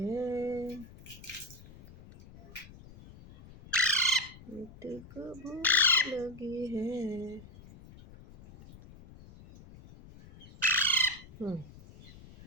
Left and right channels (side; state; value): left; noise; rumble, 19 dB below the sound